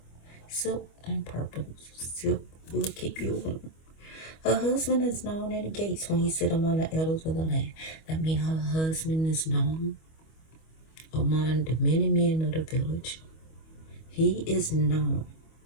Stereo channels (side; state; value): right; late; 25 ms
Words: Silk and purple. Silk will keep you warm. Her husband is known in the gates when he sit among the elders of the land. That means her husband is known among the many men of the village. He is known